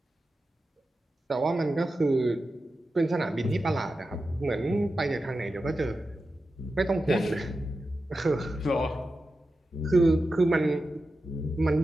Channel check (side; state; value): both; normal; correlation 0.91